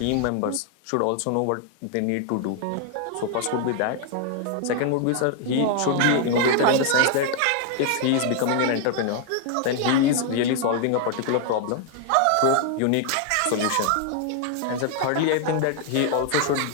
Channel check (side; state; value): both; different; correlation 0.00